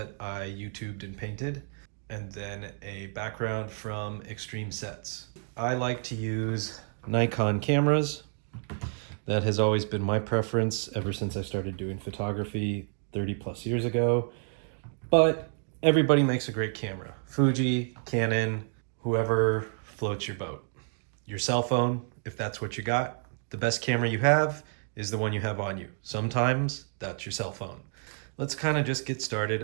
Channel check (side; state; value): left; silent; 55 dB below the other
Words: I YouTubed and painted, and then a background from Extreme Sets. I like to use Nikon cameras. That has always been my preference ever since I started doing photography 30 plus years ago. But everybody makes a great camera. Fuji, Canon, whoever floats your boat. Your cell phone, if that's what you got, the best camera you have is the one you have on you. Sometimes that's your cell phone. Let's kind of just get